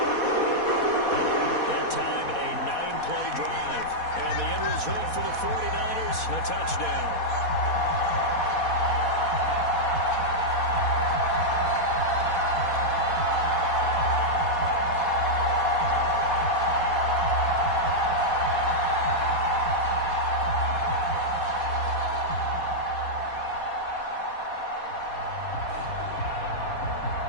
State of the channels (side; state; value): right; late; 4.2 ms